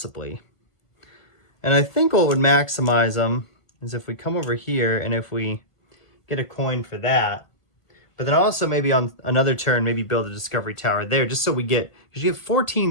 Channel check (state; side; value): late; right; 1.3 ms